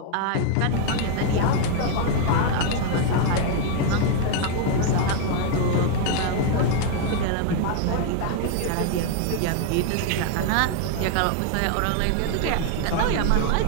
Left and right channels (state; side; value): different; both; correlation 0.00